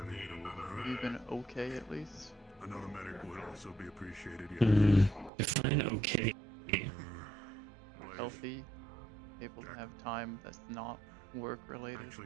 hitter would hurt. You've been okay at least. Another medic would also be appreciated. Yeah. Define okay. Healthy, able to have time that's not work related.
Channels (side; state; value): left; drops out; at 5.3 s